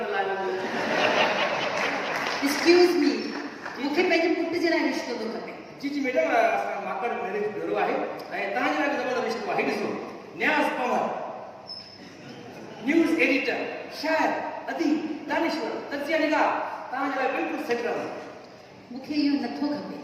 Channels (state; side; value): identical; both; correlation 1.00